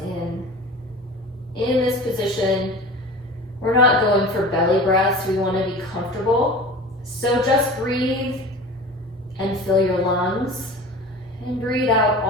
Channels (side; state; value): both; normal; correlation 0.36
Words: in. In this position, we're not going for belly breaths. We want to be comfortable. So just breathe and fill your lungs. And breathe out